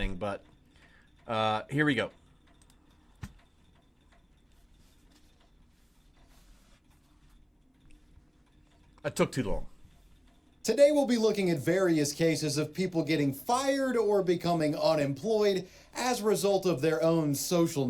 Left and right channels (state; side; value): identical; both; correlation 1.00